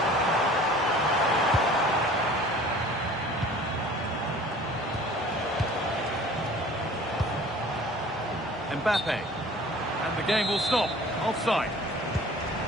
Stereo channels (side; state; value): both; normal; correlation 0.47